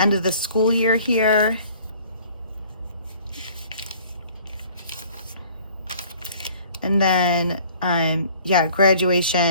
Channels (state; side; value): inverted; both; correlation -0.53